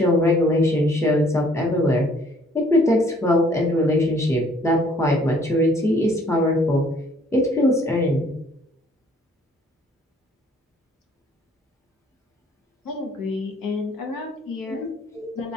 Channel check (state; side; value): normal; both; correlation 0.60